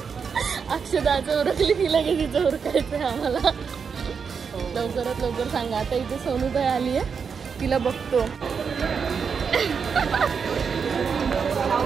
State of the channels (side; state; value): left; quieter; 6.1 dB